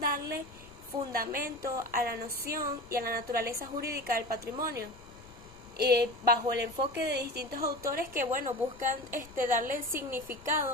fundamento a la noción y a la naturaleza jurídica del patrimonio, bajo el enfoque de distintos autores que buscan darle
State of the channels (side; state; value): left; noise; rumble, 22 dB below the sound